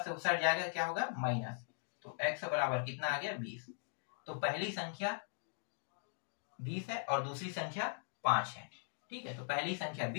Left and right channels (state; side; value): silent; right; digital silence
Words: से उस साइड जाएगा, क्या होगा, माइनस, तो x बराबर कितना आ गया, 20। तो पहली संख्या 20 है और दूसरी संख्या 5 है, ठीक है। तो पहली संख्या